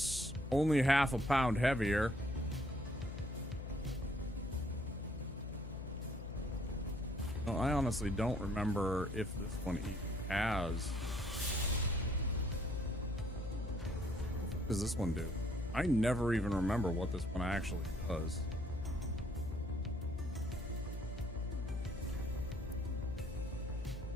only half a pound heavier. Well, I honestly don't remember if this one even has. does this one do? I never even remember what this one actually does.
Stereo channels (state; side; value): noise; left; hum, 8 dB below the sound